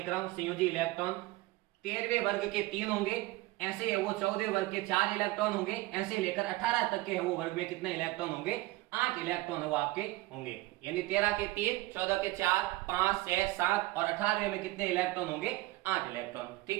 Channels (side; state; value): left; quieter; 19.4 dB